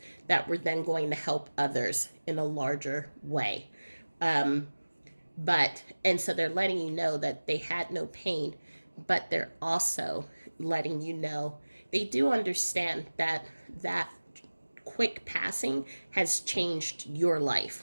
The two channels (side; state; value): both; inverted; correlation -1.00